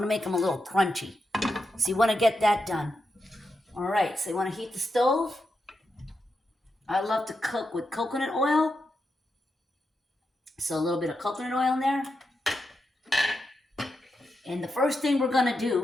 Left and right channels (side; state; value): both; normal; correlation 0.86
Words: to make them a little crunchy. So you want to get that done. All right, so you want to heat the stove. I love to cook with coconut oil. So a little bit of coconut oil in there. And the first thing we're going to